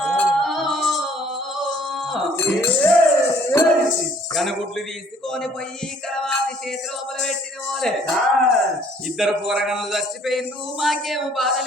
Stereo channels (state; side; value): normal; both; correlation 0.59